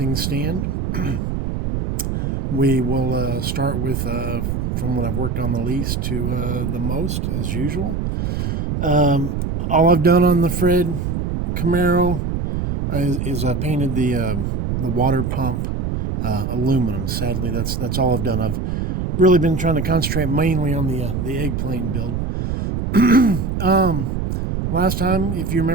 stand. We will start with from what I've worked on the least to the most, as usual. All I've done on the Fred Camaro is I painted the water pump aluminum. Sadly, that's all I've done. I've really been trying to concentrate mainly on the Eggplane build. Last time, if you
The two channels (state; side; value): noise; right; rumble, 2 dB below the sound